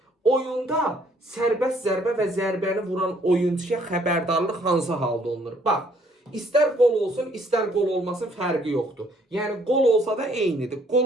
Oyunda sərbəst zərbə və zərbəni vuran oyuncuya xəbərdarlıq hansı halda olunur? Bax, İstər qol olsun, istər qol olmasın, fərqi yoxdur. Yəni, qol olsa da eynidir,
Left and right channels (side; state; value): both; normal; correlation 0.64